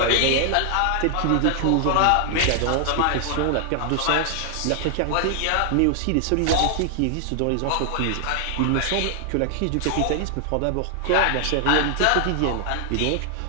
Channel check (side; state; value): both; different; correlation 0.00